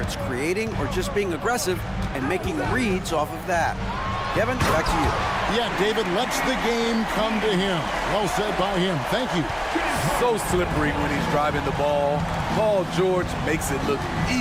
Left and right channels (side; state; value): both; identical; correlation 1.00